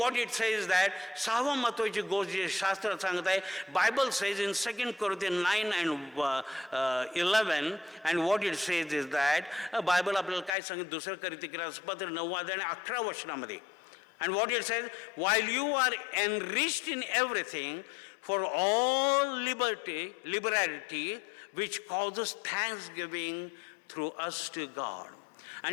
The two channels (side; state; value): right; drops out; at 10.6 s